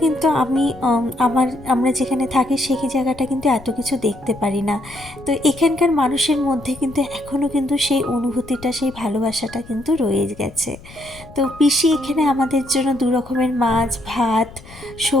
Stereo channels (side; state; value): left; noise; rumble, 19 dB below the sound